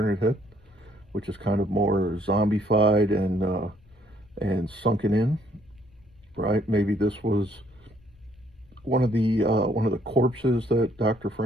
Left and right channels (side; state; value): left; noise; rumble, 29 dB below the sound